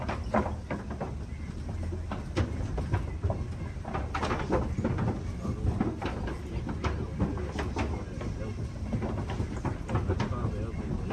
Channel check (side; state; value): both; identical; correlation 1.00